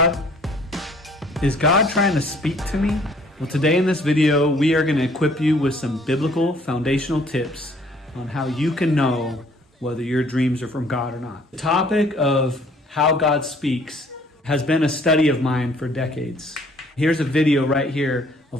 Is God trying to speak to me? Well, today in this video, we are going to equip you with some biblical foundational tips on how you can know whether your dreams are from God or not. The topic of how God speaks has been a study of mine for decades. Here's a video right here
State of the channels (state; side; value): normal; both; correlation 0.58